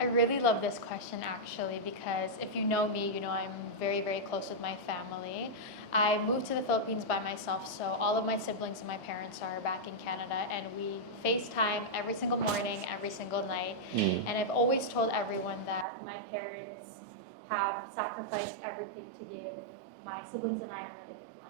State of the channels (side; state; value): left; drops out; at 15.9 s